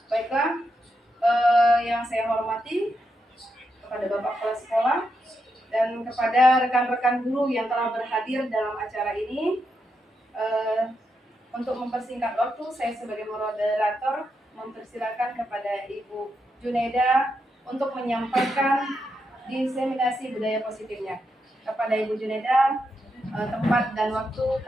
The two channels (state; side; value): normal; both; correlation 0.84